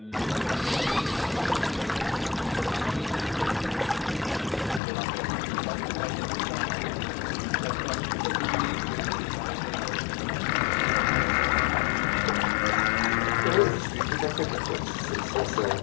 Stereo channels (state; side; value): drops out; right; at 4.8 s